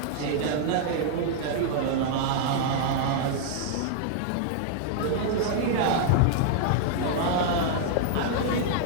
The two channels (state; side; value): different; both; correlation -0.01